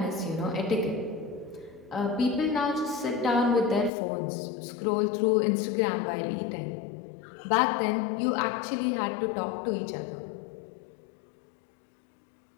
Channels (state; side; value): drops out; right; at 3.9 s